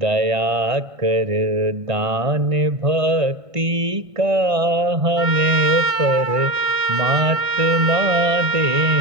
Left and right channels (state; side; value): late; left; 1.5 ms